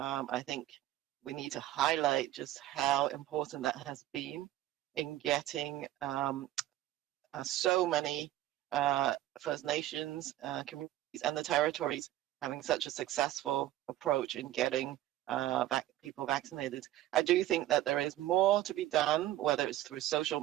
think we need to highlight just how important that has been in getting so many First Nations communities and the territories having such a successful approach in getting people vaccinated. I do think that there is more to be done, whether it's through social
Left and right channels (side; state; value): left; quieter; 14.3 dB